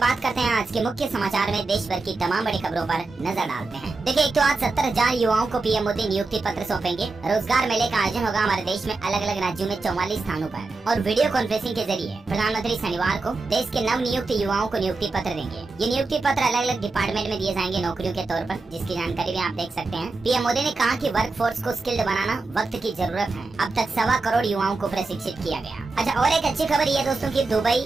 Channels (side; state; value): left; quieter; 3.7 dB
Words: करते हैं आज के मुख्य समाचार में देश भर की तमाम बड़ी खबरों पर नजर डालते हैं। देखिए, एक तो आज 70,000 युवाओं को पीएम मोदी नियुक्ति पत्र सौंपेंगे। रोजगार मेले का आयोजन होगा हमारे देश में अलग अलग राज्यों में 44 स्थानों पर। और वीडियो कॉन्फ्रेंसिंग के जरिए प्रधानमंत्री शनिवार को देश के नव नियुक्त युवाओं को नियुक्ति पत्र देंगे। ये नियुक्ति पत्र अलग अलग डिपार्टमेंट में दिए जाएंगे नौकरियों के तौर पर, जिसकी जानकारी भी आप देख सकते हैं। पीएम मोदी ने कहा कि वर्क फोर्स को स्किल्ड बनाना वक्त की जरूरत है। अब तक 1.25 करोड़ युवाओं को प्रशिक्षित किया गया। अच्छा, और एक अच्छी खबर ये दोस्तों की दुबई,